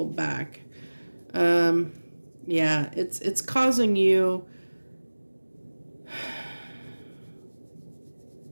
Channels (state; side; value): inverted; both; correlation -1.00